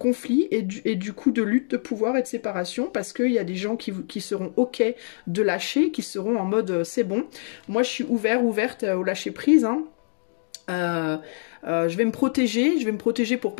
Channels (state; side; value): silent; right; 62 dB below the other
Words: et du coup de lutte de pouvoir et de séparation, parce qu'il y a des gens qui seront ok de lâcher, qui seront en mode c'est bon, moi je suis ouverte au lâcher prise, hein. Je vais me protéger pour